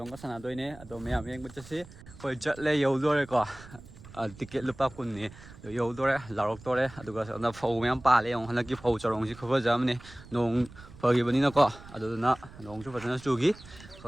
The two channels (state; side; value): noise; right; rumble, 19 dB below the sound